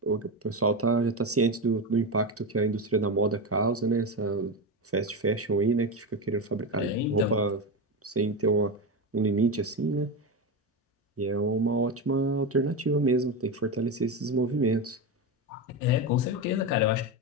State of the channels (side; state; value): both; normal; correlation 0.16